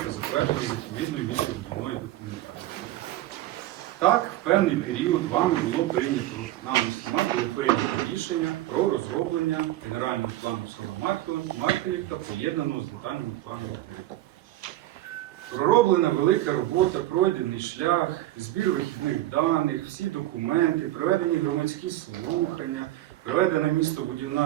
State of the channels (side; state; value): left; quieter; 15.2 dB